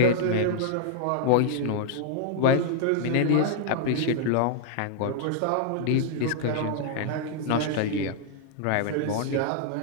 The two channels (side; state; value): both; different; correlation -0.01